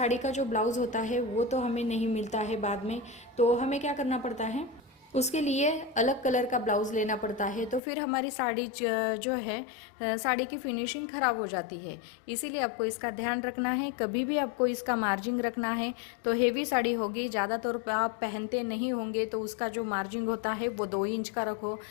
का जो ब्लाउज़ होता है वो तो हमें नहीं मिलता है बाद में, तो हमें क्या करना पड़ता है, उसके लिए अलग कलर का ब्लाउज़ लेना पड़ता है। तो फिर हमारी साड़ी जो है, साड़ी की फिनिशिंग ख़राब हो जाती है। इसीलिए आपको इसका ध्यान रखना है, कभी भी आपको इसका मार्जिन रखना है। तो हेवी साड़ी होगी, ज़्यादातर आप पहनते नहीं होंगे, तो उसका जो मार्जिन होता है वो 2 इंच का रखो,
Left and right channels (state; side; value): drops out; right; at 7.8 s